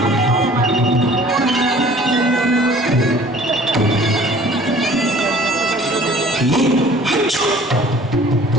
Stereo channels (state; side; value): normal; both; correlation 0.51